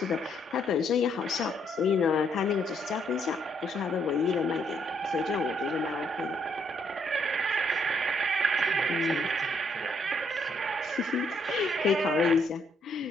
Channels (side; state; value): both; normal; correlation 0.71